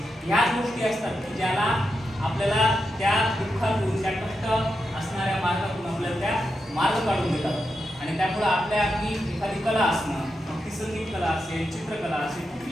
ह्या गोष्टी असतात की ज्याला आपल्याला त्या दुःखातून, त्या कष्ट असणाऱ्या मार्गातून आपल्याला त्या मार्ग काढून देतात आणि त्यामुळे आपल्या अगदी एखादी कला असणं, मग ती संगीत कला असेल, चित्रकला असेल,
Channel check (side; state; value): both; normal; correlation 0.86